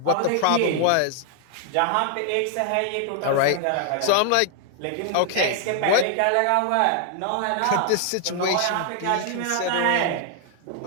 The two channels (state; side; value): different; both; correlation 0.00